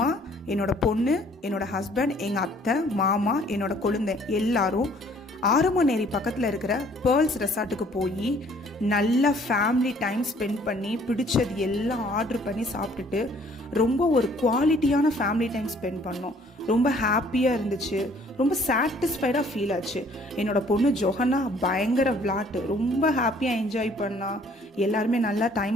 என்னோட பொண்ணு, என்னோட ஹஸ்பண்ட், எங்கள் அத்தை, மாமா, என்னோட கொழுந்தை எல்லாரும் ஆரமநேரி பக்கத்தில் இருக்கிற பேர்ல்ஸ் ரெசார்ட்டுக்கு போய் நல்லா ஃபேமிலி டைம் ஸ்பெண்ட் பண்ணி பிடிச்சது எல்லாம் ஆர்டர் பண்ணி சாப்பிட்டுட்டு ரொம்ப ஒரு குவாலிட்டியான ஃபேமிலி டைம் ஸ்பெண்ட் பண்ணோம். ரொம்ப ஹாப்பியாக இருந்துச்சு, ரொம்ப சாட்டிஸ்ஃபைடாக ஃபீல் ஆச்சு. என்னோடய பொண்ணு ஜொஹனா பயங்கர விளாட்டு, ரொம்ப ஹாப்பியாக என்ஜாய் பண்ணா. எல்லாருமே நல்லா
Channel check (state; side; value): normal; both; correlation 0.59